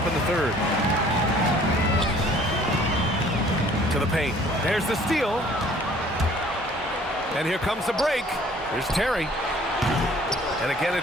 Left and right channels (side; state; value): both; normal; correlation 0.55